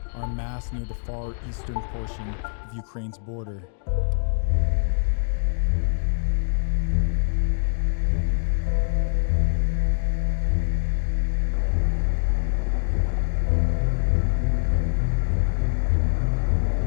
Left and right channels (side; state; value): right; silent; 61 dB below the other